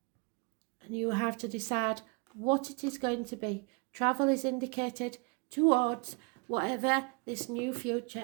and you have to decide what it is going to be. Travel is indicated towards whatever this new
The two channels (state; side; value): quieter; left; 32.1 dB